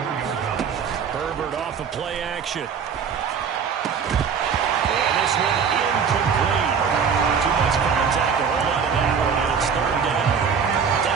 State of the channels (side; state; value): left; quieter; 6.6 dB